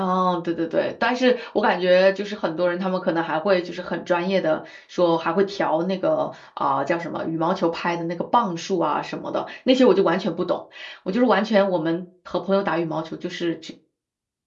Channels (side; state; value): both; identical; correlation 1.00